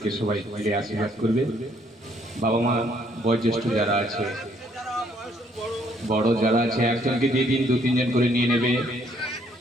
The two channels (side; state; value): both; normal; correlation 0.66